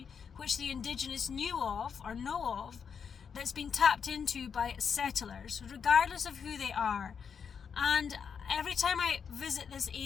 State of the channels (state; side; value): quieter; right; 6.7 dB